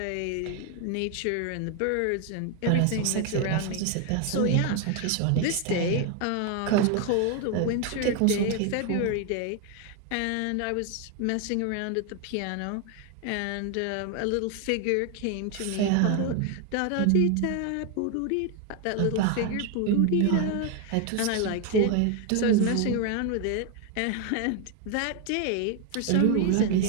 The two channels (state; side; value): different; both; correlation 0.01